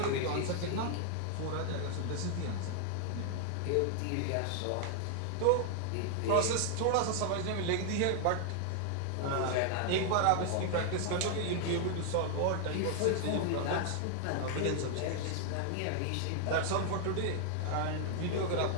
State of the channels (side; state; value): both; different; correlation 0.00